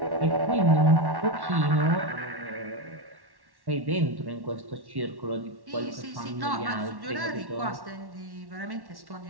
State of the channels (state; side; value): late; left; 1.1 ms